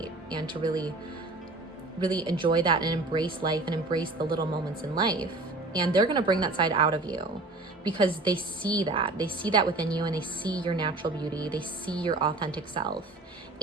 and to really, really enjoy that and embrace life and embrace the little moments in life. And they're going to bring that side out of you because they see that within you, and they see your natural beauty. They see your authentic self,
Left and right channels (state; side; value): quieter; left; 3.1 dB